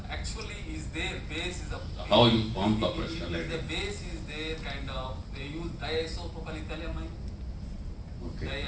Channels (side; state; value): both; identical; correlation 1.00